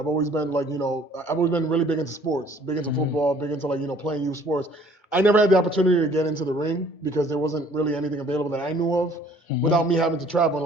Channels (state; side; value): late; right; 2.3 ms